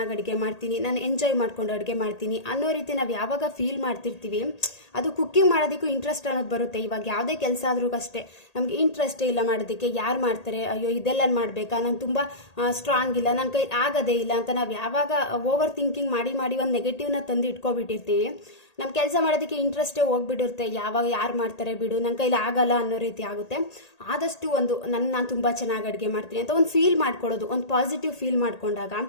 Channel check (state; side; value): late; right; 1.8 ms